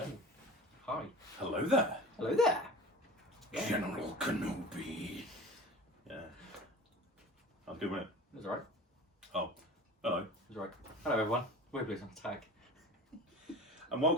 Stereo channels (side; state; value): both; normal; correlation 0.38